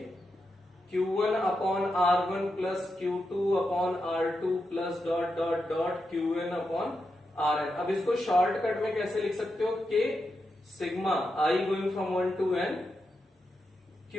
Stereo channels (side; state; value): both; normal; correlation 0.86